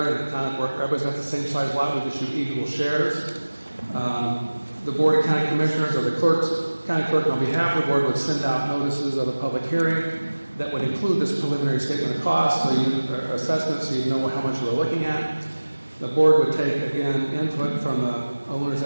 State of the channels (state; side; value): inverted; both; correlation -1.00